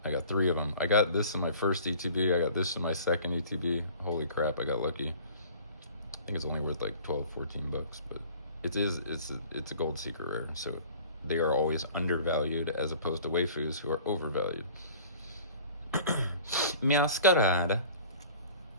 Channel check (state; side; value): inverted; both; correlation -0.47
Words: I got 3 of them. I got this in my first ETB. I got this in my second ETB. Holy crap, I got lucky. I think it's only worth like 12, 14 bucks, but it's a gold secret rare, so they are always undervalued as opposed to waifus who are overvalued. Masquerade.